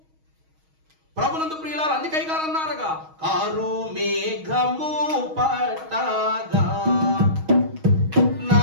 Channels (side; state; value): left; late; 6.3 ms